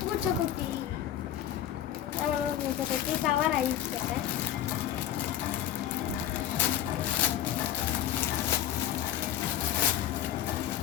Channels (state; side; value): quieter; right; 11.3 dB